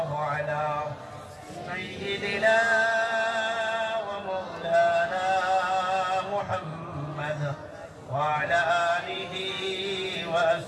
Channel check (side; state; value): both; identical; correlation 1.00